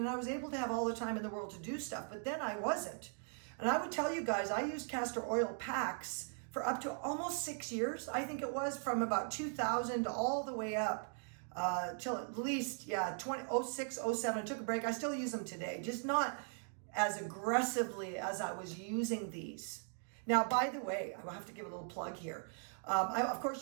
I was able to have all the time in the world to do stuff, but then I wasn't. And I would tell you guys, I used castor oil packs for up to almost 6 years. I think it was from about 2000 all the way up till at least, 06, 07. Took a break. I still use them today, just not as aggressively as I was using these. Now, by the way, I will have to give a little plug here. Of course,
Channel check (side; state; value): left; silent; 52 dB below the other